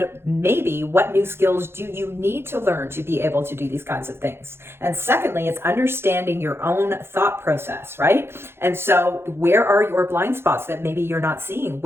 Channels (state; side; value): late; left; 0.12 ms